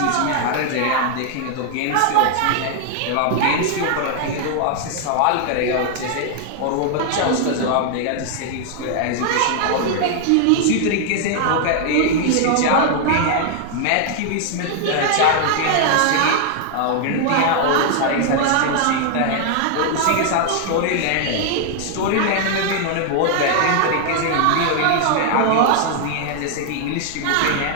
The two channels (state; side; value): different; both; correlation 0.00